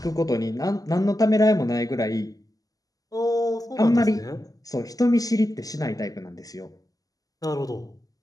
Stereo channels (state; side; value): late; right; 0.17 ms